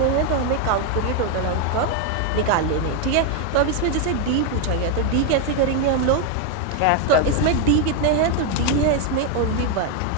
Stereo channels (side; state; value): both; different; correlation 0.01